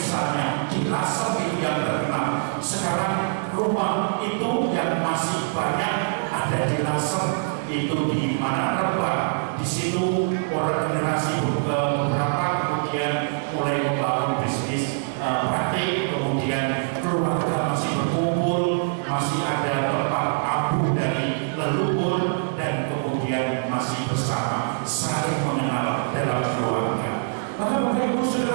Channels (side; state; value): left; silent; digital silence